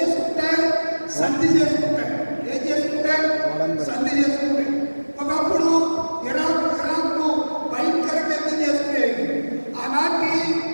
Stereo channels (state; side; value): inverted; both; correlation -1.00